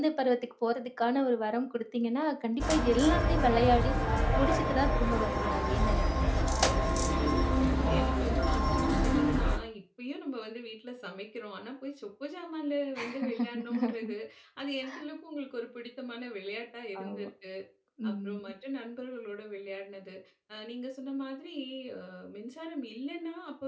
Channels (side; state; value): both; identical; correlation 1.00